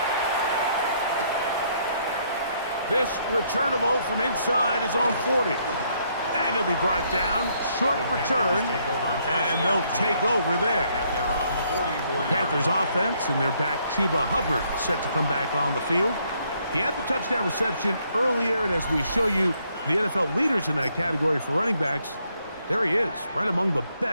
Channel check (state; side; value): inverted; both; correlation -0.70